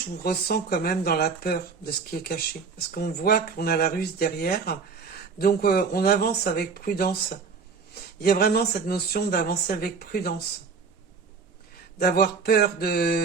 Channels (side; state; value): left; quieter; 5.1 dB